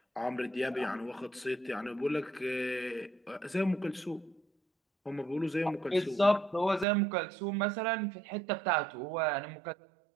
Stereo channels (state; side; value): drops out; left; at 6.9 s